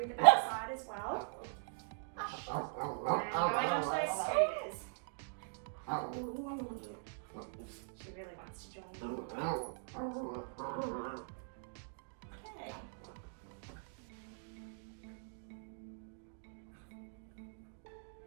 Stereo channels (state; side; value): silent; left; digital silence